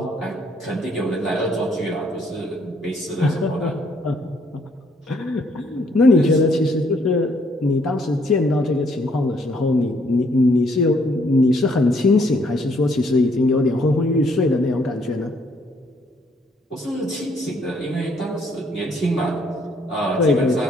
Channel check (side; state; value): both; normal; correlation 0.67